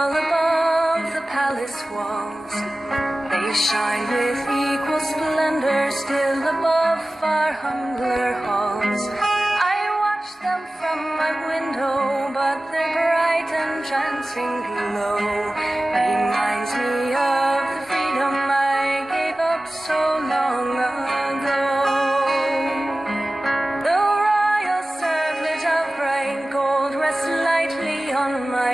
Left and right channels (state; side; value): normal; both; correlation 0.97